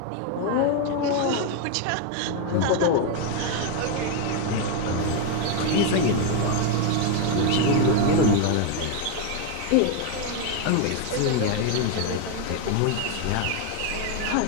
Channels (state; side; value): different; both; correlation 0.01